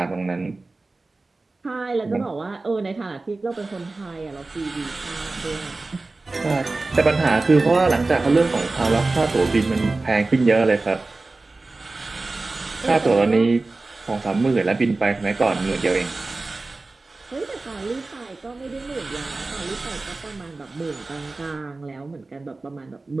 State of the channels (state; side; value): quieter; left; 3.4 dB